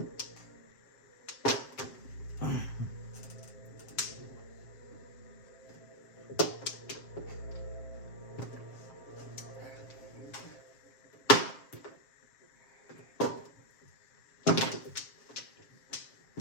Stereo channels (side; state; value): right; late; 7.5 ms